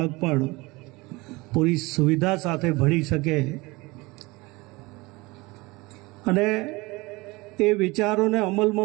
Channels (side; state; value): left; quieter; 23.1 dB